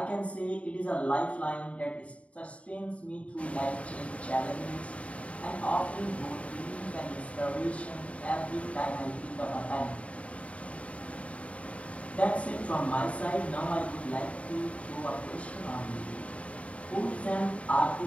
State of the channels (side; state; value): right; late; 0.065 ms